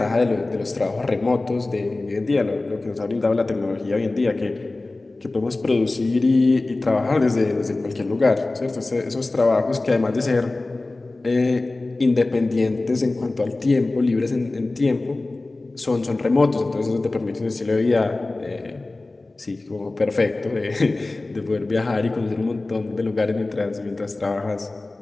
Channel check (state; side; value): quieter; right; 3.1 dB